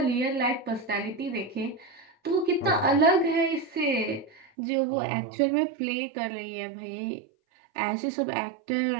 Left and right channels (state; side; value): drops out; left; at 4.5 s